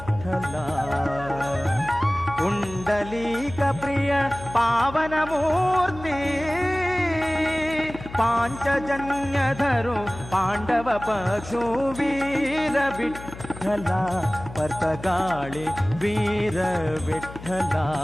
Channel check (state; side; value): noise; left; hum, 14 dB below the sound